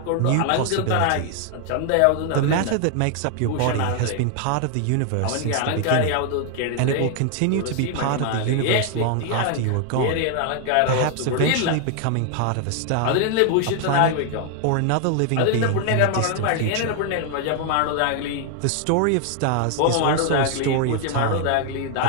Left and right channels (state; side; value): different; both; correlation 0.00